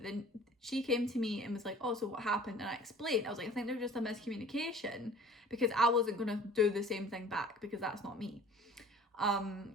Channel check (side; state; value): both; normal; correlation 0.47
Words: then she came to me and was like, oh, so what happened? And I explained. I was like, I think there was just a miscommunication, because I wasn't going to do the same thing back because that's not me.